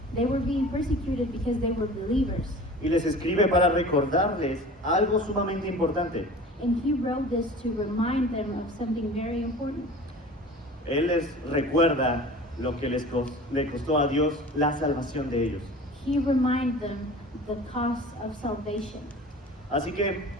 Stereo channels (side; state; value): both; normal; correlation 0.40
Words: They were being persecuted because they were believers. Y les escribe para recordarles algo sumamente importante. And he wrote this to remind them of something very important. Él les recuerda lo que le costó a Dios la salvación de ellos. He reminded them the cost of salvation. Así que